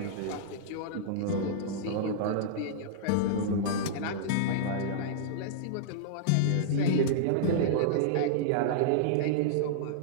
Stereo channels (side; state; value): both; different; correlation -0.02